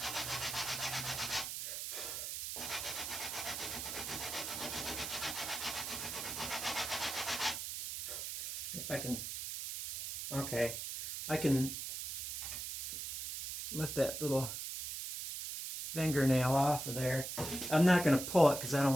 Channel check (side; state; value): right; noise; hiss, 5 dB below the sound